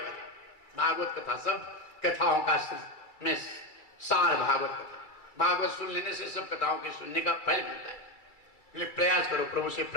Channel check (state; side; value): late; right; 2.3 ms